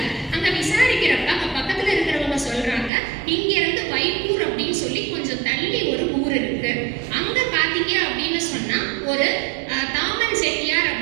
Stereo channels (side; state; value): left; drops out; at 2.9 s